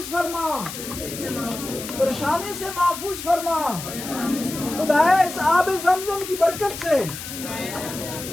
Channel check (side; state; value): left; noise; hiss, 9 dB below the sound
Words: فرما، پریشانی سے محفوظ فرما. خدایا اس آب زمزم کی برکت سے